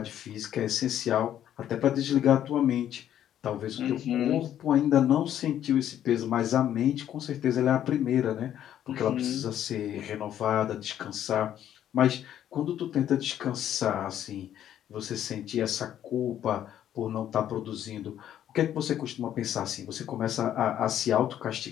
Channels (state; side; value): quieter; right; 10.8 dB